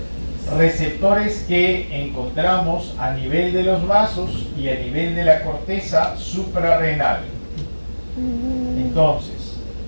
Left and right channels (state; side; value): inverted; both; correlation -1.00